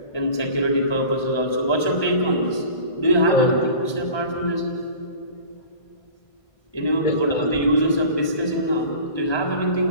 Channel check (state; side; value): late; right; 1.2 ms